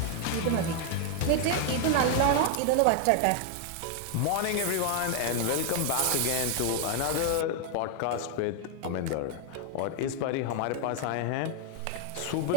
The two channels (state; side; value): different; both; correlation 0.00